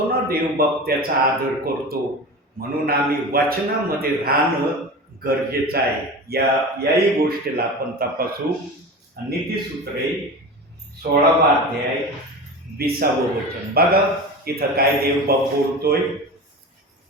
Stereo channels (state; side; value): normal; both; correlation 0.30